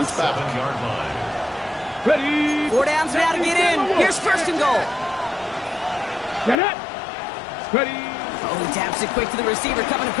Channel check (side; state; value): right; drops out; at 6.6 s